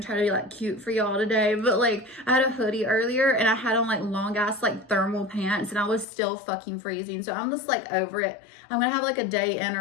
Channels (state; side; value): drops out; right; at 6.1 s